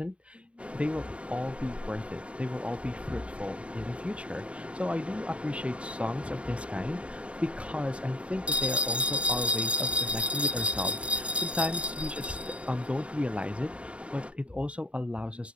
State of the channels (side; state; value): left; late; 0.061 ms